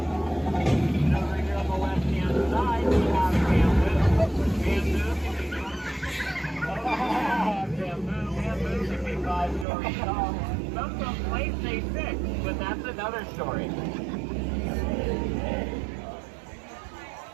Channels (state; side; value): drops out; left; at 9.7 s